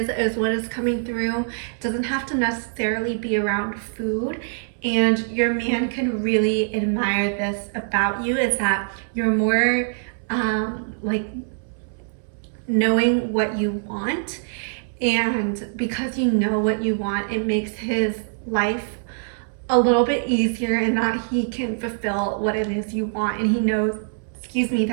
is what is coming through. It doesn't have to necessarily be around food. And your man can really admire this about you, is that you're more like knowing what you want. And because you know what you want, it makes his life a little bit easier in that he can fulfill what it is you want. And he knows, excuse me,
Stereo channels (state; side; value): silent; left; 63 dB below the other